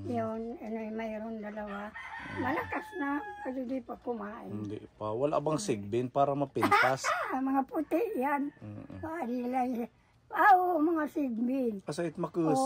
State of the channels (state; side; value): identical; both; correlation 1.00